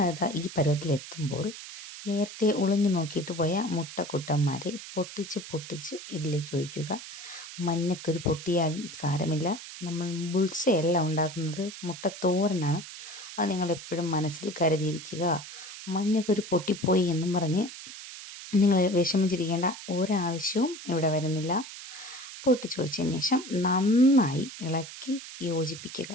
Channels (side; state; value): right; noise; hiss, 12 dB below the sound